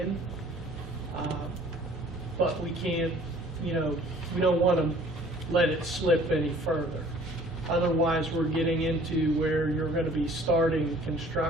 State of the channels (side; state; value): both; normal; correlation 0.53